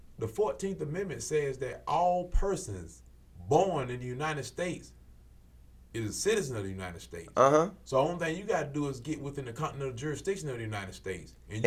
The 14th Amendment says that all persons born in the United States is a citizen of the United States. So the only thing you got to do is get within the continental jurisdiction of the United States and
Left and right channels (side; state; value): both; identical; correlation 1.00